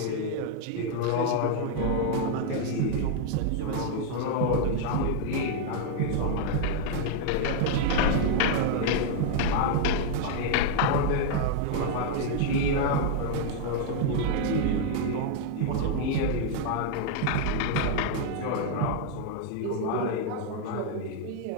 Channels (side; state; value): both; different; correlation 0.00